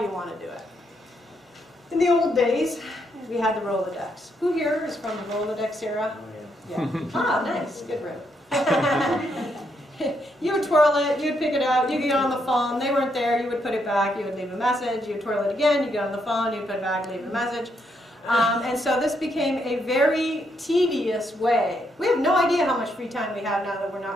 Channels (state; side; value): normal; both; correlation 0.77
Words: you want to do it? In the old days, we had the Rolodex. Who here is from the Rolodex era? Oh, yeah. Ah, nice. Good room. You would twirl it, you'd pick it out, you get on the phone, they weren't there, you would put it back, you would leave a message, you'd twirl it again, you get on the phone, you'd put it back, leave a message. And so this became a very tedious way. We have no idea how much free time we have now that we're